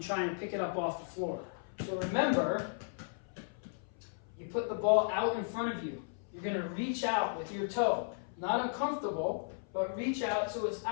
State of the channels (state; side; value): silent; right; 54 dB below the other